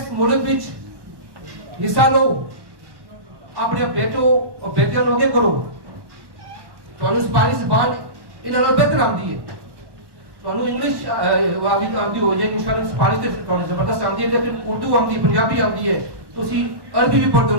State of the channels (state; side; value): late; left; 1.1 ms